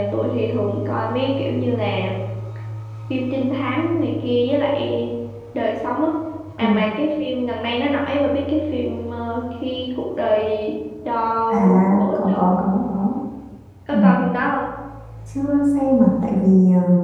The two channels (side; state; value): both; identical; correlation 1.00